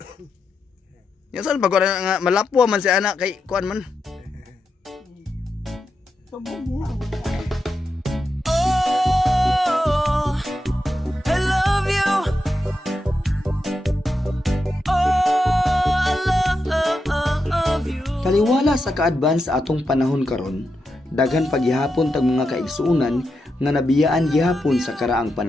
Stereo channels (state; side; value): normal; both; correlation 0.86